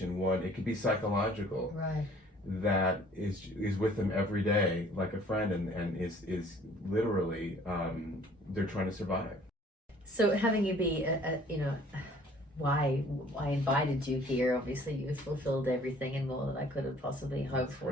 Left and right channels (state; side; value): normal; both; correlation 0.55